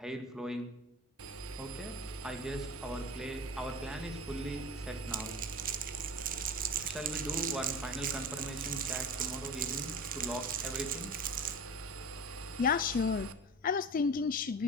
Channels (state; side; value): normal; both; correlation 0.32